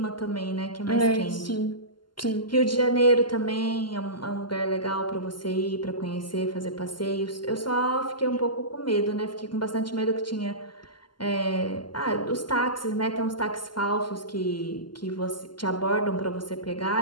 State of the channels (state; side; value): late; right; 0.71 ms